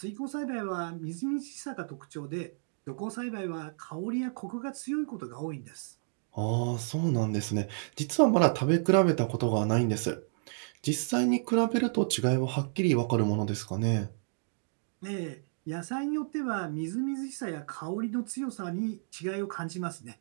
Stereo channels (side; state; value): left; silent; digital silence